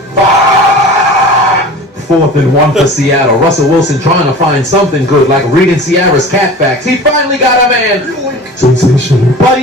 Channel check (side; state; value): both; normal; correlation 0.38